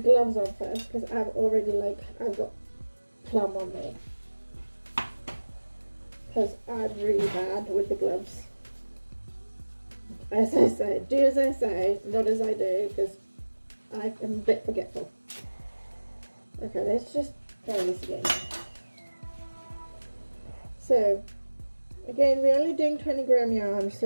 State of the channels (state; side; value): inverted; both; correlation -1.00